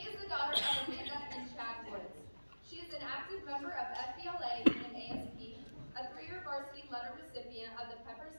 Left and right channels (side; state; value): both; inverted; correlation -1.00